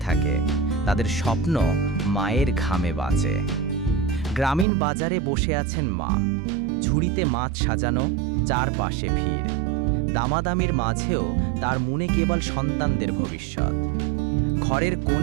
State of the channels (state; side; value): drops out; left; at 4.7 s